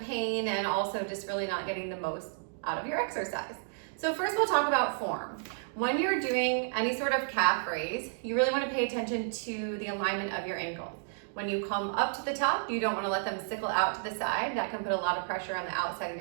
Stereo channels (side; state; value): left; silent; digital silence